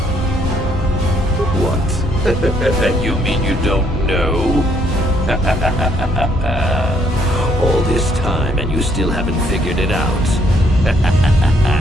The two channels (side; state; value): both; normal; correlation 0.68